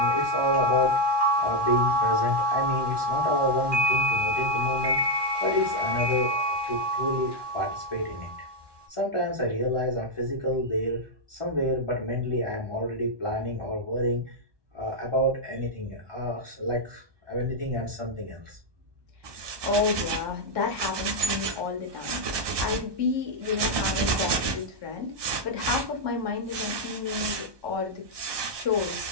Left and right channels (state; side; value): late; left; 1.2 ms